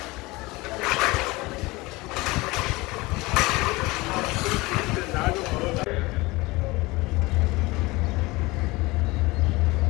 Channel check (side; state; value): right; quieter; 22.3 dB